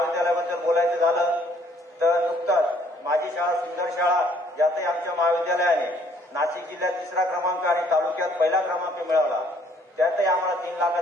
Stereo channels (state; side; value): normal; both; correlation 0.63